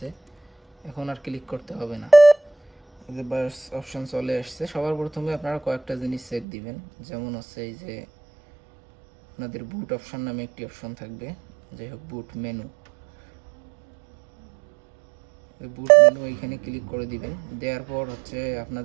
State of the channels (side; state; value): left; drops out; at 6.5 s